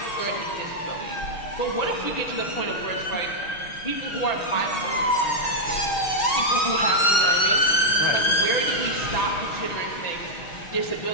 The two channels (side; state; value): right; late; 6.4 ms